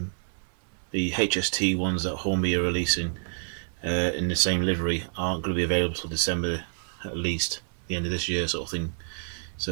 The HST ones that Hornby are releasing in the same livery aren't going to be available till December, at least the end of this year sort of thing,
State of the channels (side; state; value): left; silent; 59 dB below the other